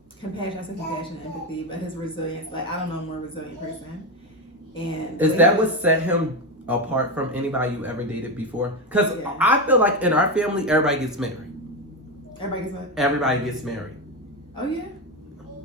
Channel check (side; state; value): both; normal; correlation 0.14